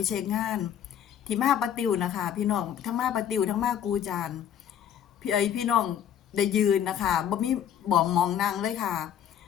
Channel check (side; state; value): right; quieter; 9.5 dB